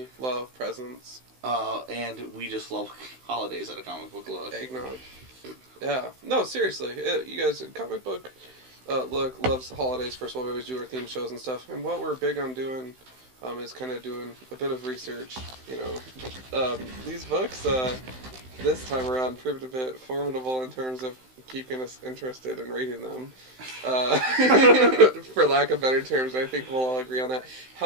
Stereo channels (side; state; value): left; late; 16 ms